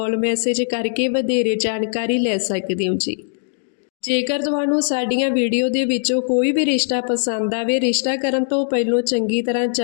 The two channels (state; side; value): silent; right; digital silence